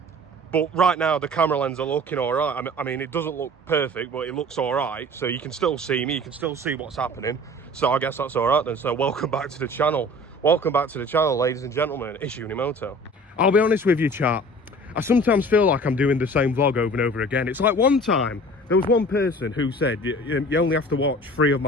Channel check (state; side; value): normal; both; correlation 0.44